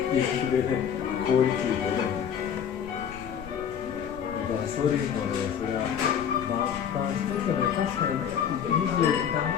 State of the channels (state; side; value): quieter; right; 8.3 dB